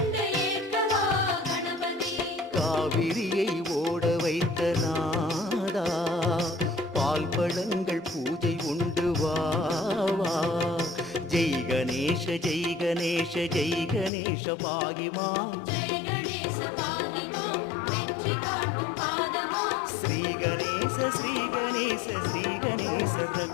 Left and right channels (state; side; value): drops out; right; at 14.1 s